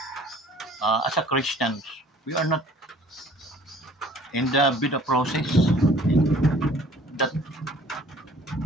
As a Christians, we are not in the bida process, okay? That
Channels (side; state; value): both; normal; correlation 0.53